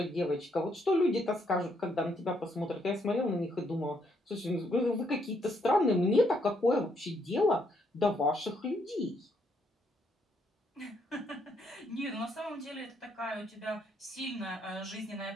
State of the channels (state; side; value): normal; both; correlation 0.73